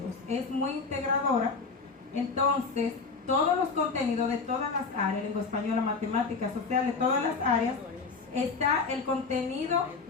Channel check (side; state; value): right; quieter; 4.6 dB